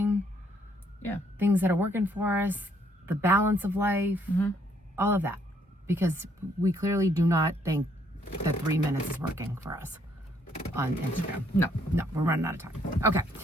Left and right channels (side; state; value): both; normal; correlation 0.68